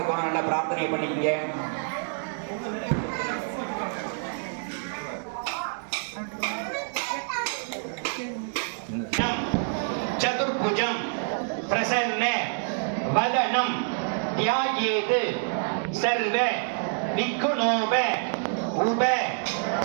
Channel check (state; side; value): silent; left; digital silence